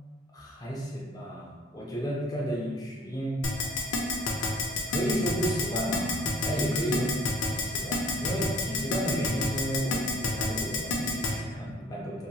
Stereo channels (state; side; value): normal; both; correlation 0.54